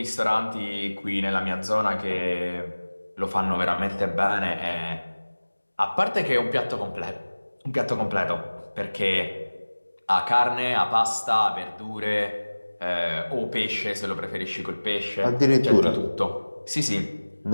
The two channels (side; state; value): both; inverted; correlation -1.00